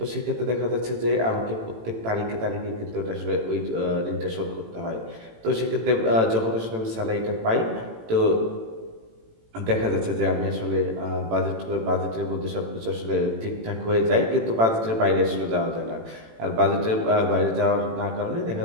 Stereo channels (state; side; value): late; left; 18 ms